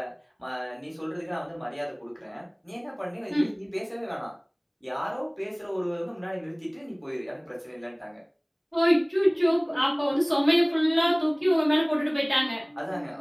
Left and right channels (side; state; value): both; identical; correlation 1.00